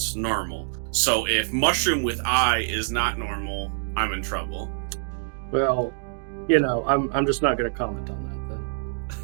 normal. So if mushroom with eye is not normal, I'm in trouble. Well, I'm just not going to comment on that then.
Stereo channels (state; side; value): silent; left; 61 dB below the other